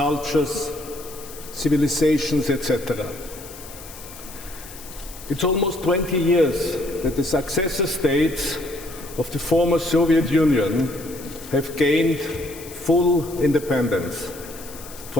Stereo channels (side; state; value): left; noise; hiss, 16 dB below the sound